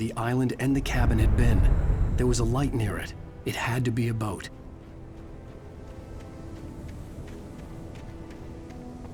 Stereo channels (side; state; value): both; identical; correlation 1.00